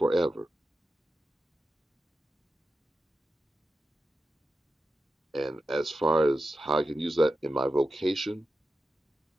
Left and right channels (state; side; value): normal; both; correlation 0.91